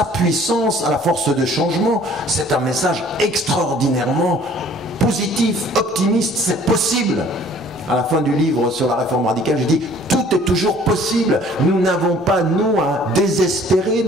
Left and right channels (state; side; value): normal; both; correlation 0.54